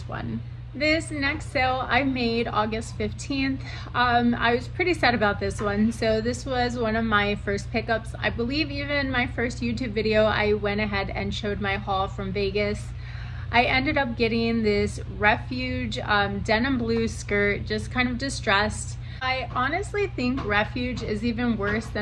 one. This next sale I made August 15th. I was pretty sad about this one. So this was one of my first pickups. I believe even my first YouTube video, I went ahead and showed my haul from Vegas. I ended up getting this Refuge denim blue skirt, just kind of distressed. I honestly think Refuge is even worse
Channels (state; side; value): identical; both; correlation 1.00